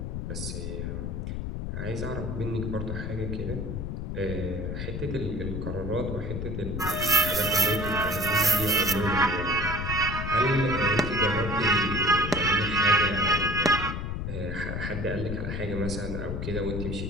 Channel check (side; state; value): left; noise; rumble, 4 dB below the sound